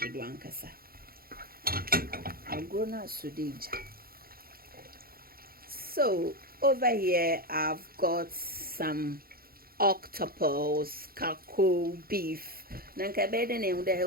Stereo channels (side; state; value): left; late; 0.43 ms